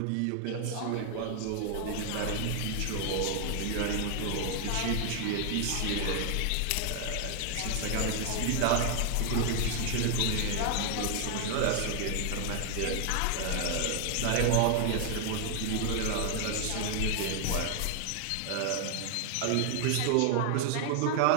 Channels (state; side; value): different; both; correlation 0.00